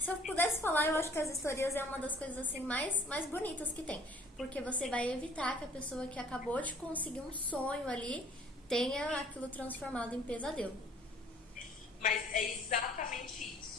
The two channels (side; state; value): both; normal; correlation 0.55